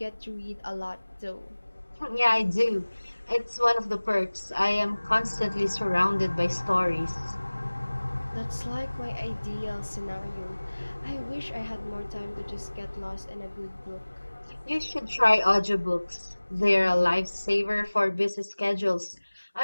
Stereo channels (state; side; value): inverted; both; correlation -1.00